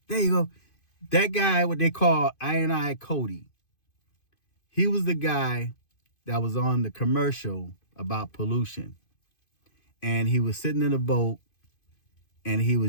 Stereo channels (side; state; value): right; late; 2.5 ms